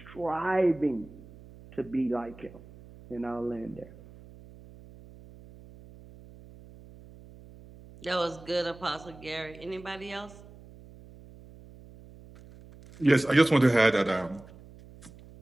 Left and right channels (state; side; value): noise; right; hum, 20 dB below the sound